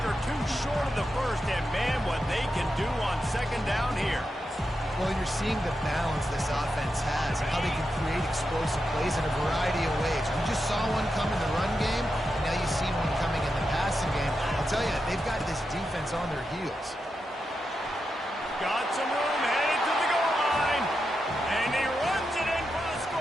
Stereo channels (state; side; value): normal; both; correlation 0.87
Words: or two short of the first, and man, what they can do on 2nd down here. Well, you're seeing the balance this offense has, how they can create explosive plays in a variety of ways. We just saw one come in the run game, and now you've seen one coming in the passing game. I'll tell you, they've got this defense on their heels. Got some room, headed to the goal line, and he runs it in for the